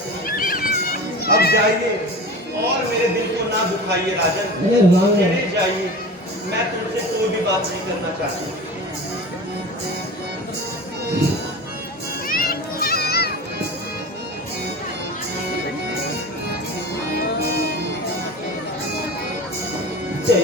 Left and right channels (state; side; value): normal; both; correlation 0.33